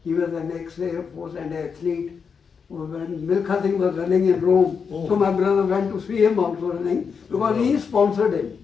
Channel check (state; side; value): quieter; right; 6.0 dB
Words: He was an ex-Air Force and athlete. When Milkha Singh was running in Rome, so my brother went to see him also running because he sponsored him.